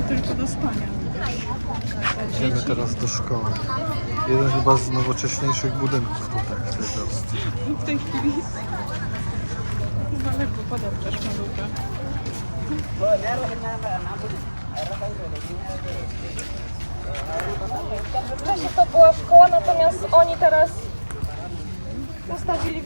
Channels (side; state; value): both; inverted; correlation -1.00